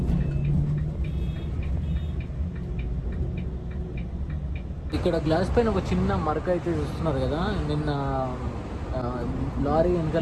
ఇక్కడ గ్లాస్ పైన ఒక చిన్న మరక అయితే చూస్తున్నారు కదా. నిన్న లారీ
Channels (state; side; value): identical; both; correlation 1.00